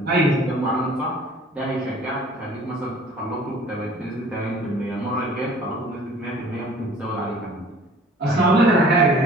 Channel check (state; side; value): normal; both; correlation 0.50